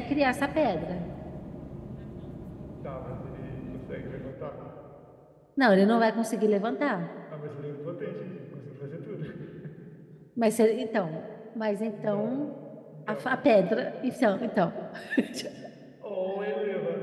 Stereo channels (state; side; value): identical; both; correlation 1.00